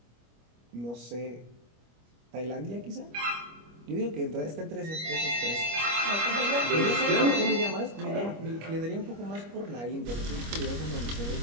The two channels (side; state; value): left; late; 25 ms